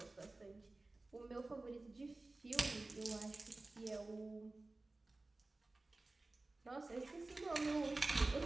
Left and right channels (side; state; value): left; quieter; 3.1 dB